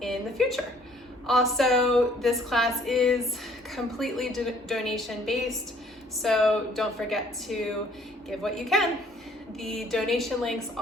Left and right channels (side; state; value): both; normal; correlation 0.60